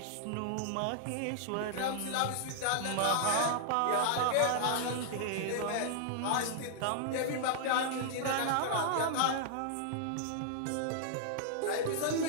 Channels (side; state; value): both; different; correlation -0.01